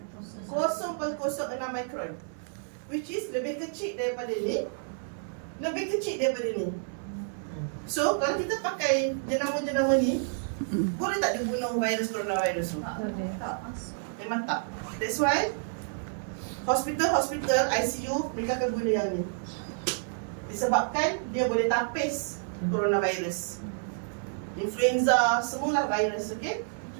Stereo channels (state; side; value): silent; left; 56 dB below the other